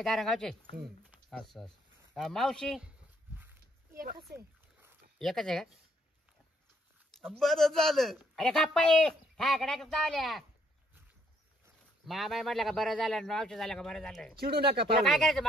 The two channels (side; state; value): both; normal; correlation 0.69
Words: गावचे. असं असं मावशी एकच आहे. एकच आहे का. बरं झालं. अरे गप्पाई हा कडे चावल्या. मामा म्हटलं का बरं झालं मावशी झालं का बरं झालं. चिडू नका तुला काय पाहुणे. करायचं